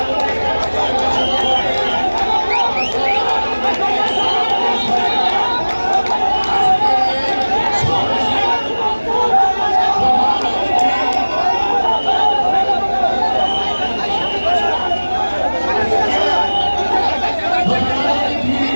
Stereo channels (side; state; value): both; inverted; correlation -1.00